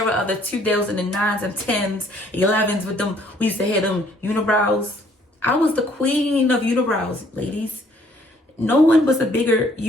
of the 2009s and 10s, 11s with them. We used to have them unibrows. I was the queen of unibrows, ladies. No one was a bigger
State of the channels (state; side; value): normal; both; correlation 0.62